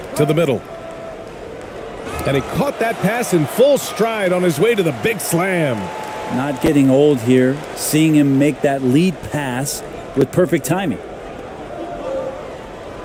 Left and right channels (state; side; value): identical; both; correlation 1.00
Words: To the middle. And he caught that pass in full stride on his way to the big slam. Not getting old here, seeing him make that lead pass with perfect timing.